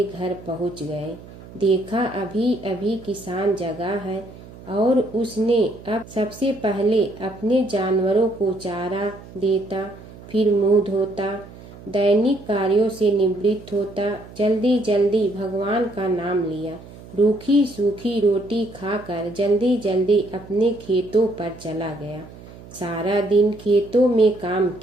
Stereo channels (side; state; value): right; noise; hum, 18 dB below the sound